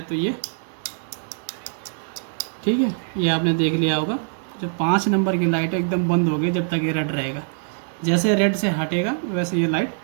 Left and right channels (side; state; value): left; silent; digital silence